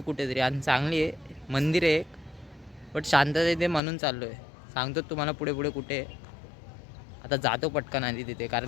कुठेतरी आणि चांगली आहे. मंदिर आहे एक, बट शांतता आहे ते म्हणून चाललो आहे. सांगतो तुम्हाला पुढे पुढे कुठे आहे. आता जातो पटकन आधी तिथे,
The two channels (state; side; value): drops out; right; at 3.8 s